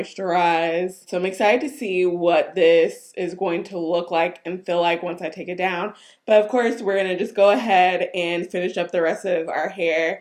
So I'm excited to see what this is going to look like and feel like once I take it down. But of course, we're going to just go ahead and finish up the rest of our hair,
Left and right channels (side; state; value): both; identical; correlation 1.00